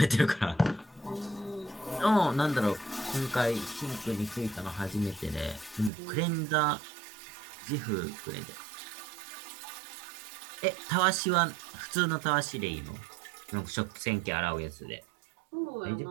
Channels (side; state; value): left; drops out; at 5.9 s